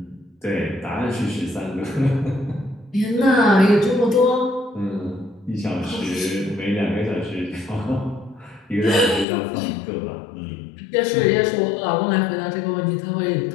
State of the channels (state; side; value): drops out; right; at 9.2 s